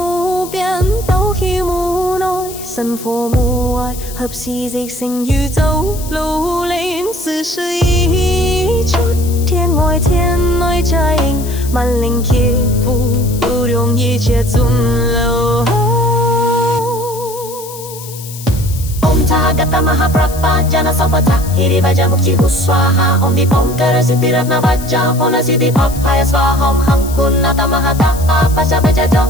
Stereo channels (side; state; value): left; noise; hiss, 14 dB below the sound